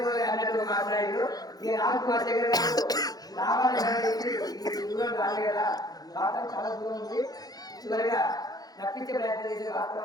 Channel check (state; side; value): late; right; 0.19 ms